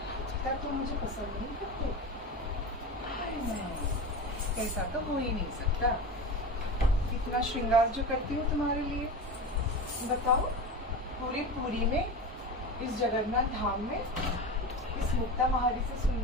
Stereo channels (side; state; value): both; normal; correlation 0.27